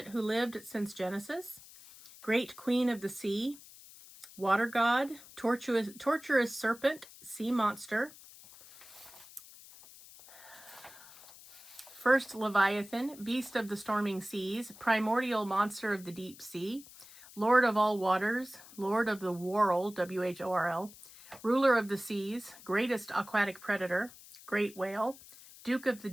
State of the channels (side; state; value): left; noise; hiss, 19 dB below the sound